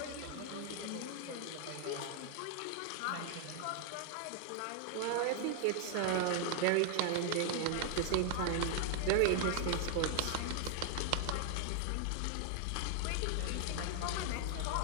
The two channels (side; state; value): both; different; correlation 0.00